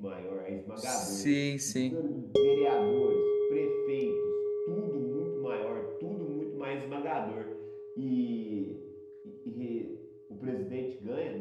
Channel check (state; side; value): identical; both; correlation 1.00